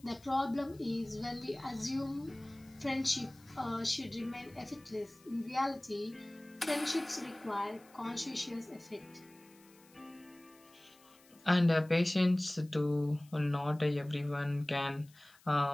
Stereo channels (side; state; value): left; noise; hiss, 27 dB below the sound